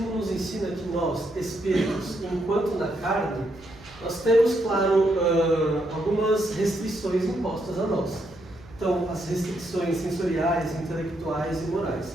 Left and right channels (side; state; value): right; noise; hum, 22 dB below the sound